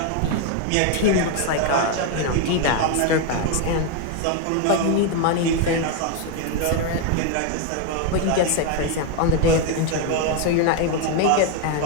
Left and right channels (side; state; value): both; different; correlation 0.01